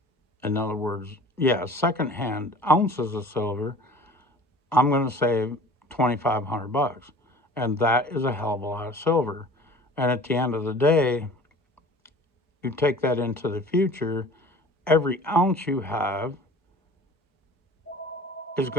In other words, secondhand ounces of silver. I'm going to save $2,500, and that is a hell of a lot of silver. And at the end of the day, you take that into the future, every ounce you have is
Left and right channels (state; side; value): normal; both; correlation 0.45